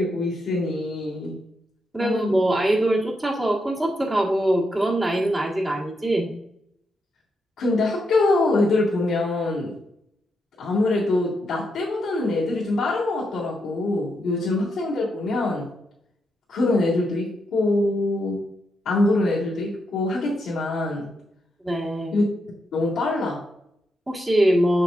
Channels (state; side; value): normal; both; correlation 0.82